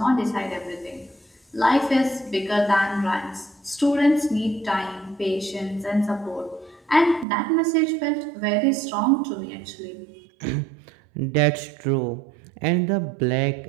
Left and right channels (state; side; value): drops out; left; at 7.2 s